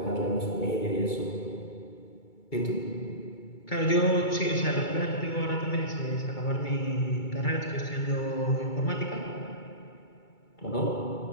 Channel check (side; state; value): right; late; 2.3 ms